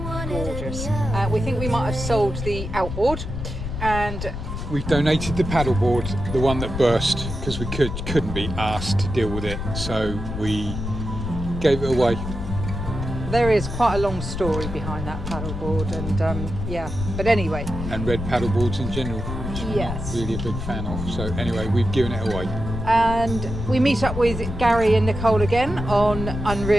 gorgeous. We think we might have sold the Outboard, and we donated the paddleboard, the one that burst, because we couldn't be asked to deal with it, so we gave it away. There is quite a long story behind that paddleboard, and yeah, but anyway. And red paddleboards in general, which yes, I'm not really a big fan of. So anyway, we've given it away. And we meet up with Gary and Nicole again on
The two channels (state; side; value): noise; left; rumble, 6 dB below the sound